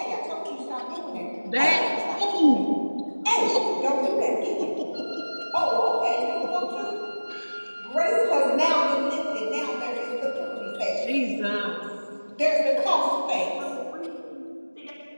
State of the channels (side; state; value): both; inverted; correlation -1.00